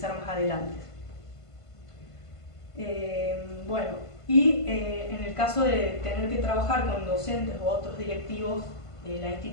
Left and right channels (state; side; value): late; right; 1.5 ms